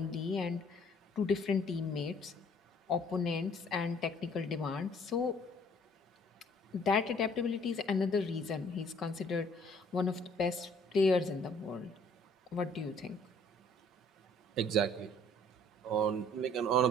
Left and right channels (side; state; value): both; normal; correlation 0.58